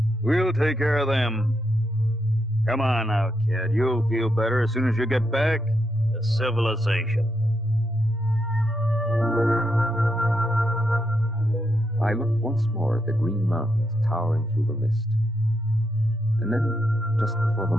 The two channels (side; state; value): both; normal; correlation 0.81